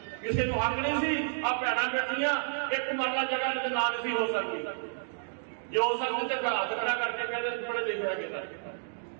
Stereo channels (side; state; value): left; silent; digital silence